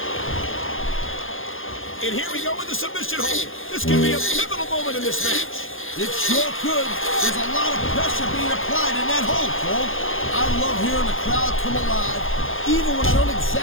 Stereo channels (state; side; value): late; right; 0.59 ms